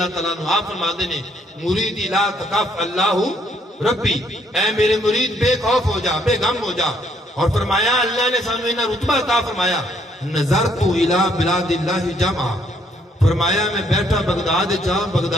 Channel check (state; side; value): normal; both; correlation 0.69